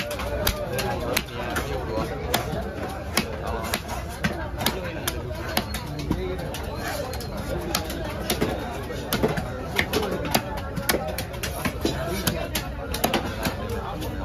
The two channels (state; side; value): identical; both; correlation 1.00